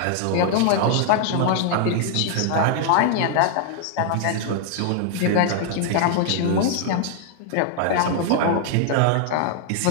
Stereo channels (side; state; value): both; different; correlation -0.01